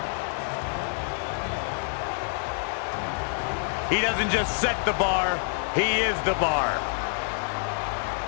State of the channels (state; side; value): silent; right; digital silence